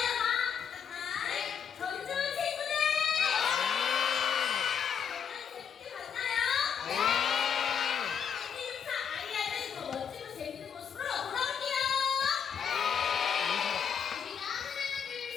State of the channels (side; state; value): right; quieter; 7.5 dB